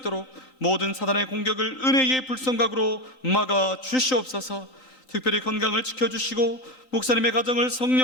모든 사단의 공격을 은혜의 불성각으로 막아 주시옵소서. 특별히 건강을 지켜주시고 목사님의 가정을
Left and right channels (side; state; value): right; late; 3.9 ms